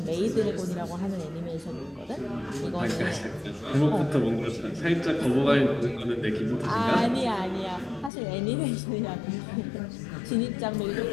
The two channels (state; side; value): drops out; right; at 8.1 s